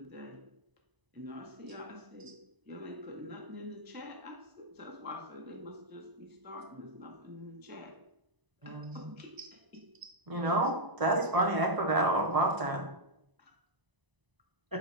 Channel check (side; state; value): left; late; 1.0 ms